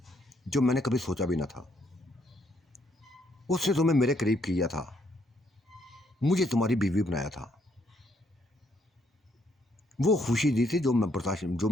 जो मैंने कभी सोचा भी ना था। उसने तुम्हें मेरे करीब किया था, मुझे तुम्हारी बीवी बनाया था। वो खुशी दी थी जो मैं बर्दाश्त, जो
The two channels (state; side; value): normal; both; correlation 0.71